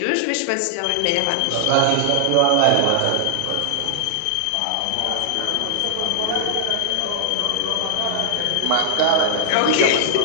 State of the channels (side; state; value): both; different; correlation -0.01